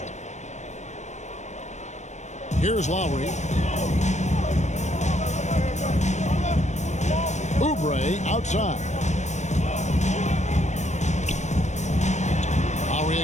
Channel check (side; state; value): right; late; 0.34 ms